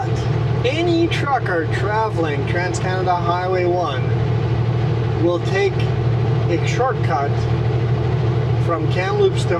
any trucker traveling Trans-Canada Highway 1 will take a shortcut from Kamloops to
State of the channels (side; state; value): both; identical; correlation 1.00